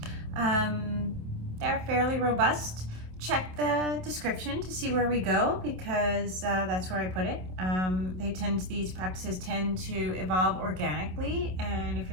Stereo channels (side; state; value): left; late; 27 ms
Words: They're fairly robust. Check the description to see where we go, because that's where I put it. These practices tend to evolve organically, and if